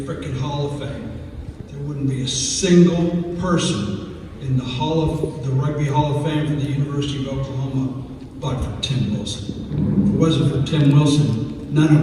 Hall of Fame. There wouldn't be a single person in the Rugby Hall of Fame for the University of Oklahoma but for Tim Wilson. If it wasn't for Tim Wilson, none of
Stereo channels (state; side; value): identical; both; correlation 1.00